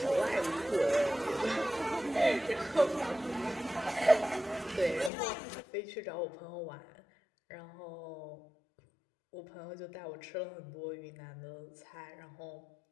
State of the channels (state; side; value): drops out; right; at 5.1 s